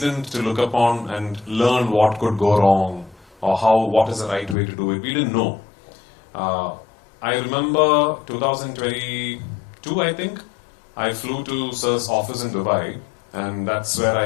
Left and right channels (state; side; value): drops out; right; at 4.5 s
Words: to look upon and learn what could go wrong or what is the right way to do it. We didn't know. I remember 2022, I think, I flew to Sir's office in Dubai, and that's where